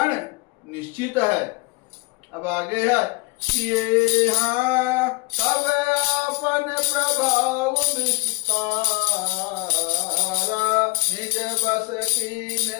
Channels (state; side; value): quieter; right; 27.0 dB